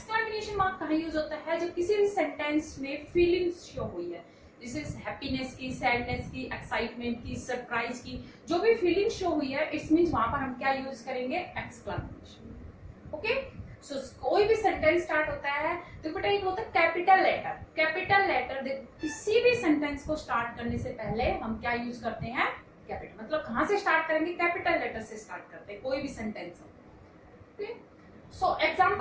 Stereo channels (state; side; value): identical; both; correlation 1.00